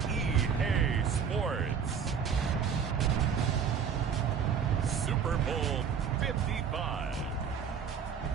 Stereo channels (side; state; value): left; quieter; 7.0 dB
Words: EA Sports, Super Bowl 55.